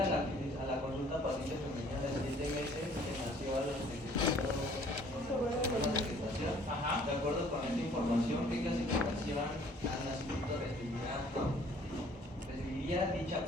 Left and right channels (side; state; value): both; normal; correlation 0.57